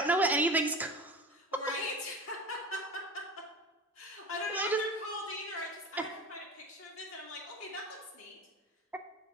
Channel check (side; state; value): both; normal; correlation 0.32